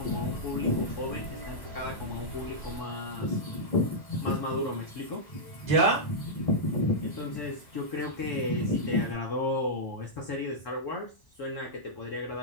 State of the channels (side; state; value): right; late; 1.0 ms